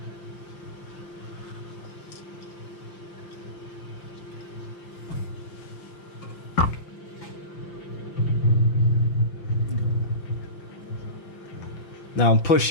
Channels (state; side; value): late; right; 5.9 ms